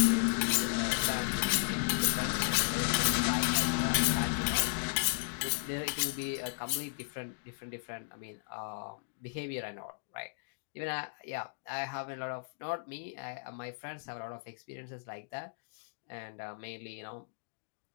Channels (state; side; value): silent; right; digital silence